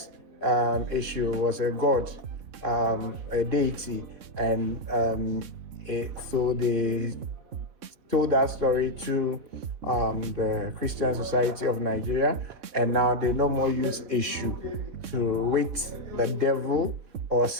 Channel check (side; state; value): left; late; 3.6 ms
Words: issue was a god, a deity, and so they told that story to the Christian Society of Nigeria, and now they no more use issue to with the devil or